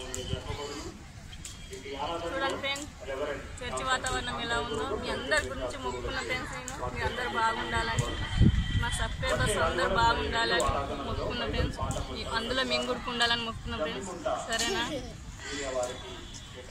జరపబడును. చూడండి ఫ్రెండ్స్, చర్చి వాతావరణం ఎలా ఉందో. మీ అందరి గురించి మొక్కుకున్న ఫ్రెండ్స్, మీ అందరు బాగుండాలని, మా సబ్స్క్రైబర్స్ అందరు బాగుండాలని మొక్కుకున్న ఫ్రెండ్స్. అందులో మేము కూడా ఉండాలని మొక్కుకున్న ఫ్రెండ్స్. సరేనా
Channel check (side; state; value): both; identical; correlation 1.00